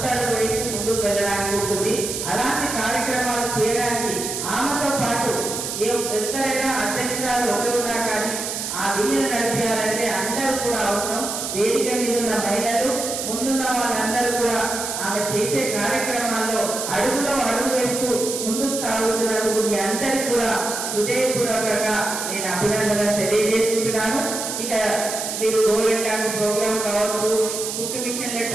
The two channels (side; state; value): right; noise; hiss, 4 dB below the sound